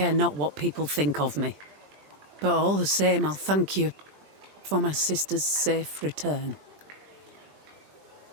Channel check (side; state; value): left; late; 20 ms